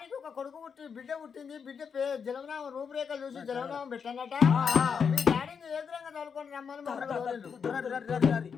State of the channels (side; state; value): right; quieter; 6.4 dB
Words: ఒక కొడుకు బిడ్డ పుట్టింది బిడ్డ జలవనామం రూపురేఖలు చూసి జలవనామం పెట్టనట మీ డాడీని ఎదురంగా తోలుకొని రమ్మని